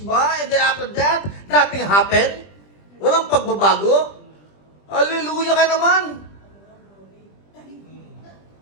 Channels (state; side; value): late; right; 20 ms